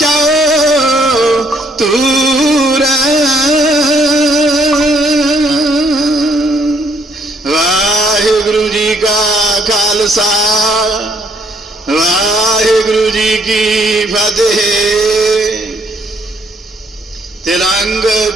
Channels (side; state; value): both; normal; correlation 0.68